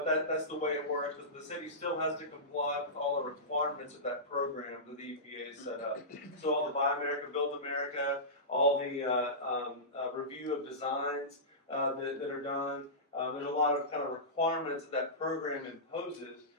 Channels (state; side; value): normal; both; correlation -0.19